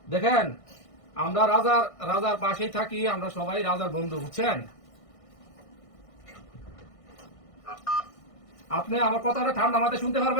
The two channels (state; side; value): late; right; 1.6 ms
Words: দেখেন, আমরা রাজার রাজার পাশেই থাকি, আমরা সবাই রাজার বন্ধু, বুঝছেন? আপনি আমার কথাটা ঠান্ডা মাথায় শুনতে